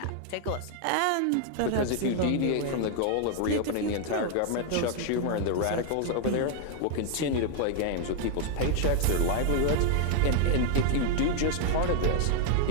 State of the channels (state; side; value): different; both; correlation 0.00